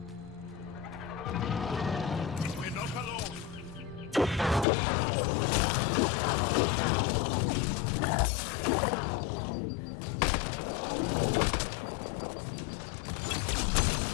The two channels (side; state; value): right; drops out; at 4.7 s